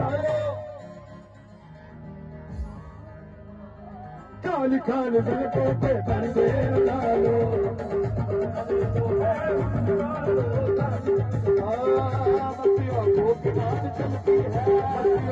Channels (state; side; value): identical; both; correlation 1.00